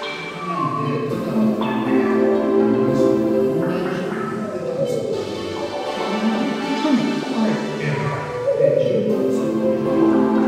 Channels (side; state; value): both; identical; correlation 1.00